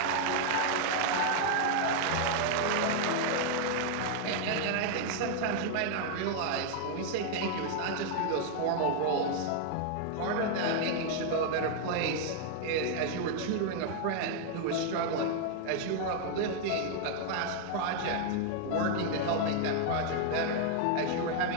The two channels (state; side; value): different; both; correlation 0.00